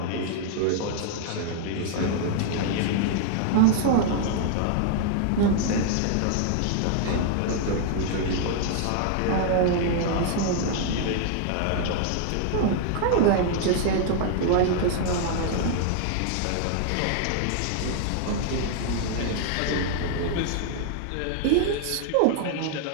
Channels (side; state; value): both; different; correlation 0.00